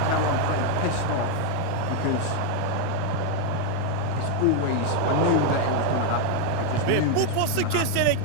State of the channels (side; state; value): both; different; correlation 0.01